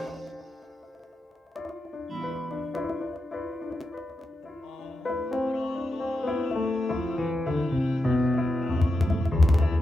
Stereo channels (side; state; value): both; normal; correlation 0.88